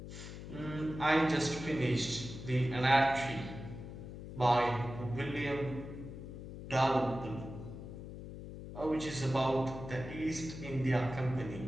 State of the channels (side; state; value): left; noise; hum, 11 dB below the sound